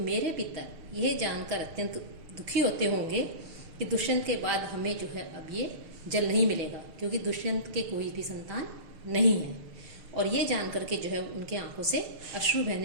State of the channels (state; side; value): late; left; 6.1 ms